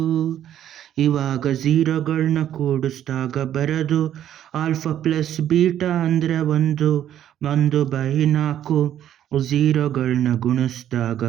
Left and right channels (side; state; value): left; quieter; 10.9 dB